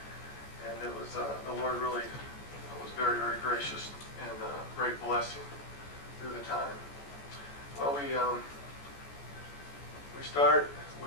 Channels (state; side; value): late; right; 14 ms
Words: And it was the Lord really was very, very gracious and great blessing through the time. Well, we start